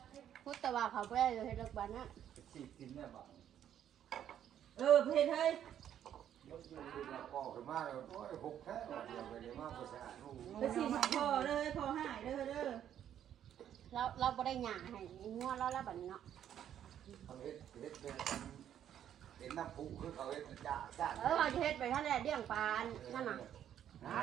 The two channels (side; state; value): left; quieter; 10.2 dB